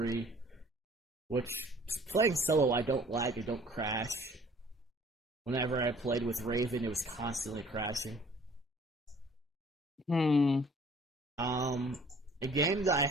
Which, playing solo, I don't lag, I don't crash. Whenever I played with Raven, it was constantly crashing. A game that I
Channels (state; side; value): normal; both; correlation 0.54